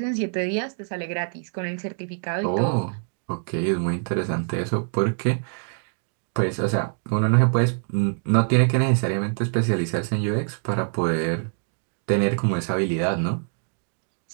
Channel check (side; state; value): left; silent; 62 dB below the other